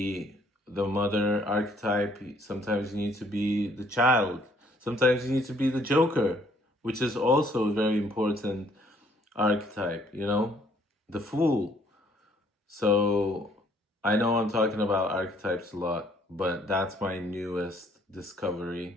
the mother archetype. Sometimes you need to be the child. Sometimes you need to be the joker, which is also a very important archetype, the fool. So I know I'm talking about archetypes a lot, but that's my newest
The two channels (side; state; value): both; normal; correlation 0.64